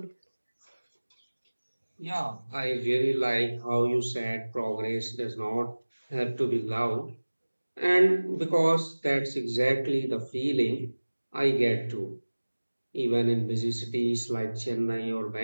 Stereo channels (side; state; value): both; inverted; correlation -1.00